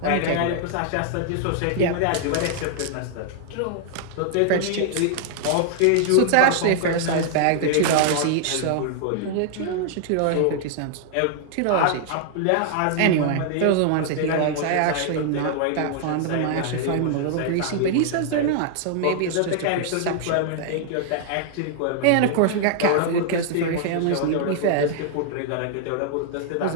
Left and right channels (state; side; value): different; both; correlation 0.00